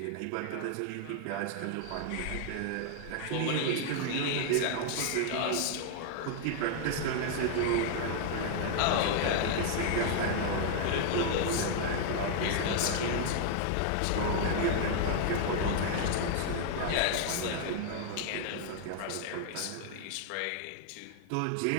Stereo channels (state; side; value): different; both; correlation 0.00